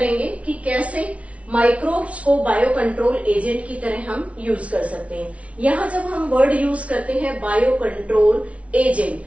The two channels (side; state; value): left; late; 0.064 ms